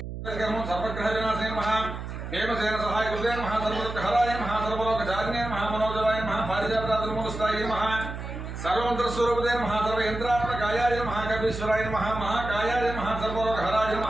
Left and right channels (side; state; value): right; noise; hum, 8 dB below the sound